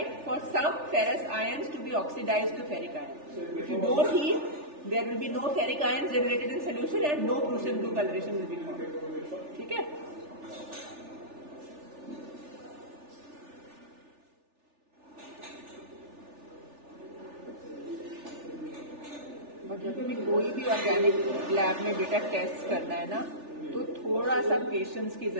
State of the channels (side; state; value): left; late; 3.4 ms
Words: for some ferrous ions to be oxidised to ferric ion. If you don't heat, there will be no ferric ions generated in solution and no Prussian blue coloration will be formed. ठीक है. और जब भी कोई भी ऑर्गेनिक लैब में बेटा टेस्ट करना है ना, तो थोड़ा सा पेशेंस की